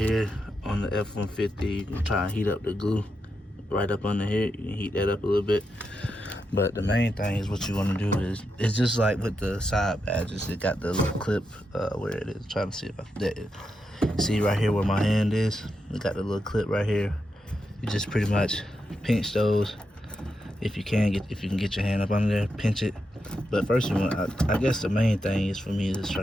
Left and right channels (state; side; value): normal; both; correlation 0.85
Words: on the F150. You can try and heat up the glue right up under here. You can heat that up a little bit. But the main thing is what you want to do is, it's just like with the side badges. It got the little clip where it is. Trying to see if I can see right here where my hand is. It got the little clip right here. You just pretty much pinch those. If you can get your hand up under there, pinch it. But first you want, I guess the main thing is for me is